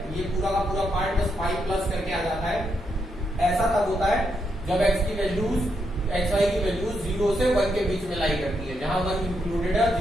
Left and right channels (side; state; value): both; normal; correlation 0.80